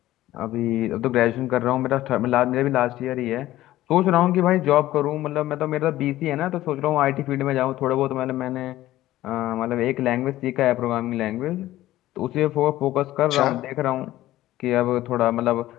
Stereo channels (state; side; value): quieter; right; 15.3 dB